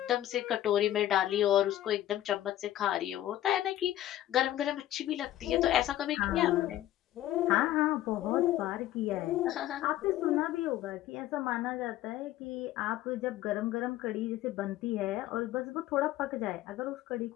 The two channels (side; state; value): right; quieter; 13.5 dB